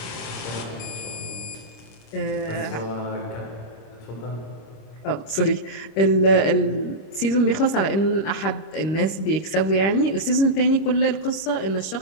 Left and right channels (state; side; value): late; right; 26 ms